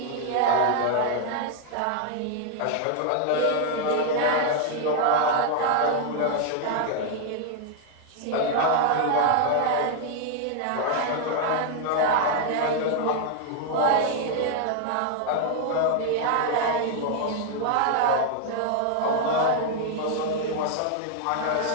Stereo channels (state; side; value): different; both; correlation 0.00